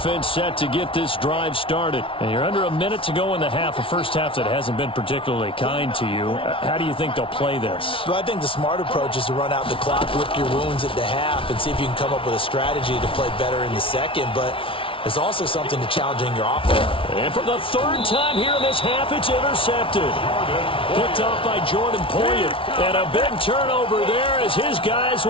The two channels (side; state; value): right; late; 0.25 ms